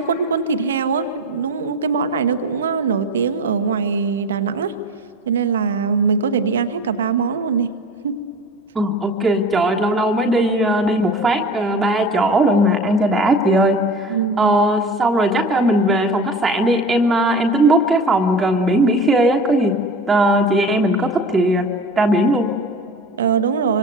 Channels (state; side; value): normal; both; correlation 0.36